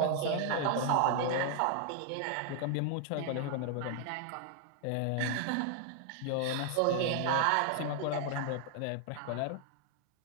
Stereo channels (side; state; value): both; different; correlation 0.00